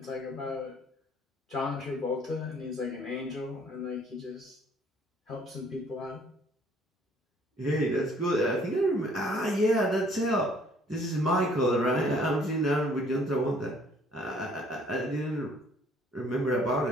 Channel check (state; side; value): normal; both; correlation 0.59